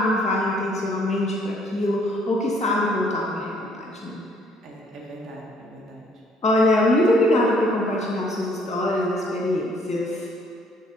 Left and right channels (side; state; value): both; normal; correlation 0.64